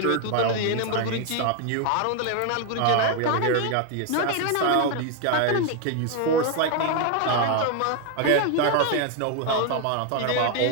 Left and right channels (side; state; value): both; different; correlation 0.01